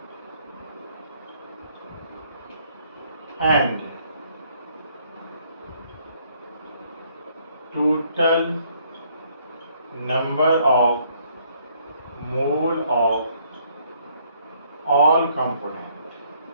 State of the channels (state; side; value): inverted; both; correlation -0.66